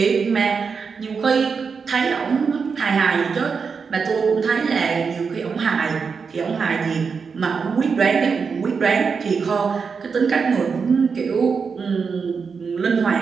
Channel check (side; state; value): left; quieter; 5.5 dB